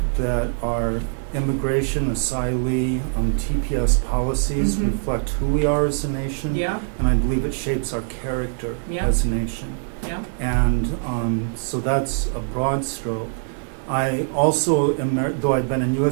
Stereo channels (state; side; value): silent; left; 64 dB below the other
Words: that our immigration, asylee, TPS policies Mhm. reflect who we are as a nation, Yeah, and I believe it shapes our character Yeah. as a nation. yeah. And so that's a broad stroke. I also am, though I've been in